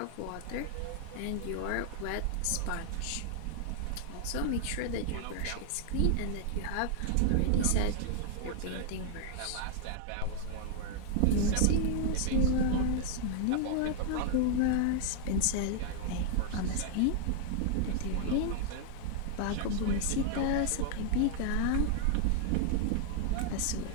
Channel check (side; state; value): both; different; correlation -0.01